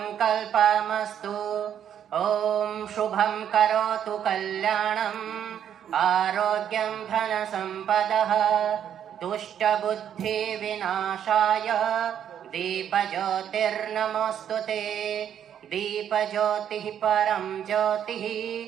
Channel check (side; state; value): left; quieter; 9.4 dB